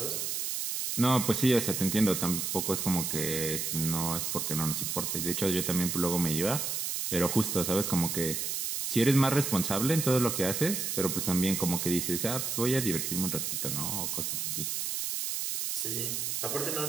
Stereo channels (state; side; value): noise; right; hiss, 2 dB below the sound